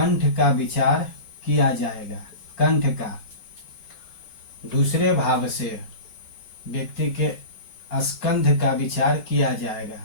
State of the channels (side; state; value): right; late; 5.4 ms